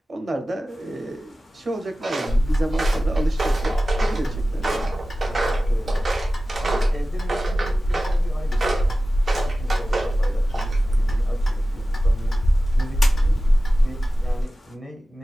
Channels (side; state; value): both; normal; correlation 0.96